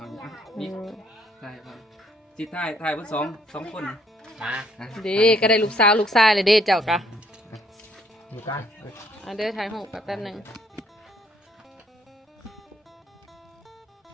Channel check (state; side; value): normal; both; correlation 0.66